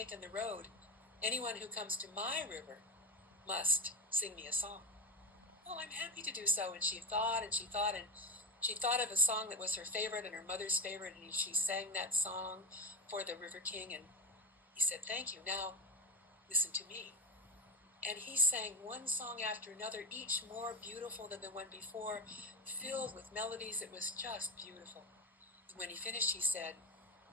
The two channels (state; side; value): normal; both; correlation 0.11